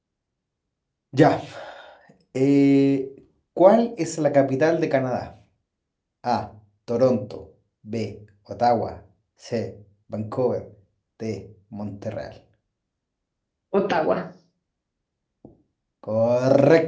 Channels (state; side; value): identical; both; correlation 1.00